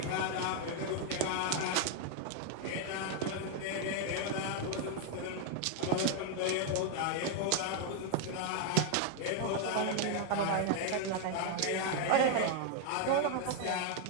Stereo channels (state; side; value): different; both; correlation 0.00